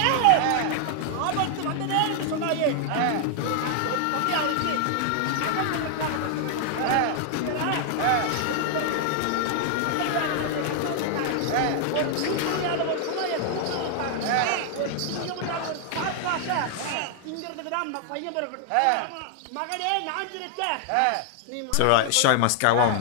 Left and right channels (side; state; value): both; different; correlation 0.00